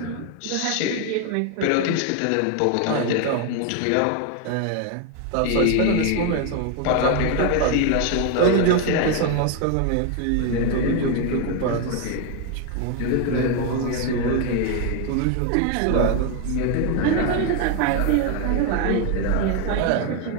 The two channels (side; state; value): both; different; correlation 0.01